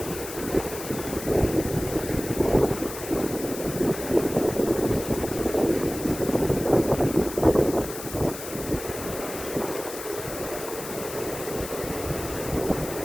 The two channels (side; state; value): left; noise; hiss, 10 dB below the sound